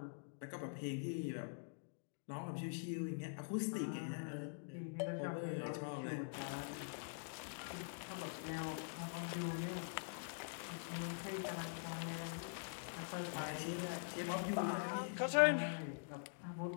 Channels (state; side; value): silent; right; digital silence